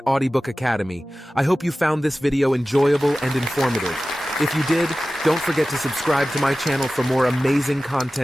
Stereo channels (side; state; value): both; normal; correlation 0.96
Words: Audiobook Academy. I hope you found this video enjoyable and informative. If you did, don't forget to subscribe to my channel for more amazing